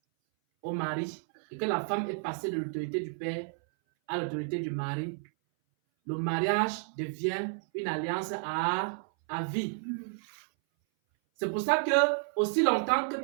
au mari et que la femme est passée de l'autorité du père à l'autorité du mari, le mariage devient une alliance à vie. C'est pour ça que aussi longtemps que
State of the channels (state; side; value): silent; left; 57 dB below the other